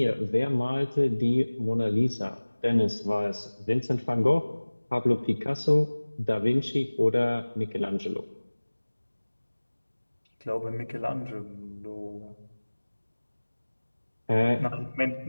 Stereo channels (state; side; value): inverted; both; correlation -1.00